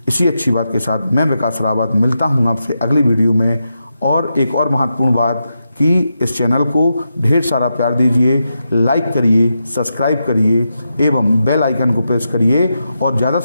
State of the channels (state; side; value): inverted; both; correlation -0.87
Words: इसी अच्छी बात के साथ मैं विकास रावत मिलता हूँ आपसे अगली वीडियो में। और एक और महत्वपूर्ण बात कि इस चैनल को ढेर सारा प्यार दीजिए, लाइक करिए, सब्सक्राइब करिए एवं बेल आइकन को प्रेस करिए और ज़्यादा